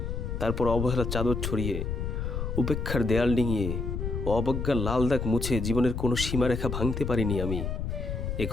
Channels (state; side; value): noise; left; rumble, 3 dB below the sound